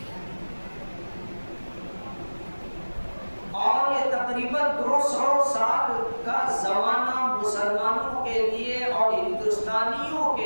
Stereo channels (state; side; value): inverted; both; correlation -1.00